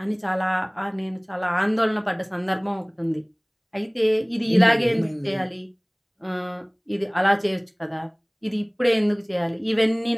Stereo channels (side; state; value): both; identical; correlation 1.00